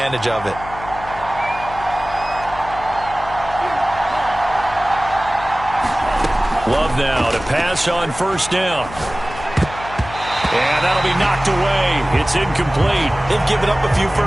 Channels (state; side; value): noise; left; hum, 14 dB below the sound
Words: of it. Love now to pass on 1st down. And that'll be knocked away. It's incomplete. They've given up a few